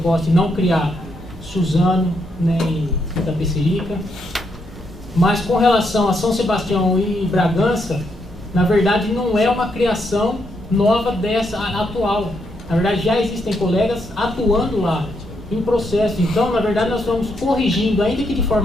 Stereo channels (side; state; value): both; normal; correlation 0.78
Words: e não criar Suzano, né, em Itapecerica. Mas com relação a São Sebastião e Bragança, na verdade não é uma criação nova dessa atual. Na verdade já existem colegas atuando lá em processo. Então, na verdade, nós estamos corrigindo, ainda que de